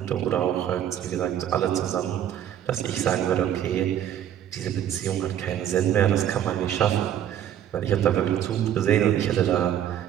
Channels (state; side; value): quieter; left; 10.5 dB